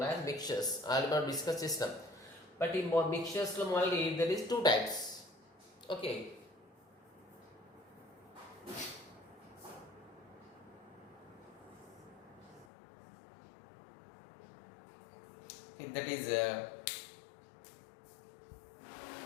as mixtures. I will not discuss this now. But in mixtures only there is two types. Okay. That is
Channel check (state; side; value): drops out; right; at 12.7 s